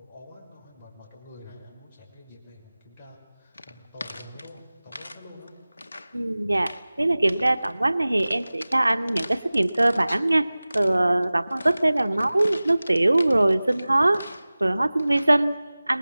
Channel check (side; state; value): both; inverted; correlation -0.99